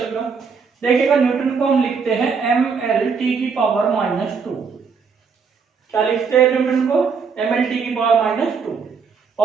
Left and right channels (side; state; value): left; quieter; 5.6 dB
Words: का, देखिएगा न्यूटन को हम लिखते हैं mL/-2, क्या लिखते हैं न्यूटन को, mL/-2,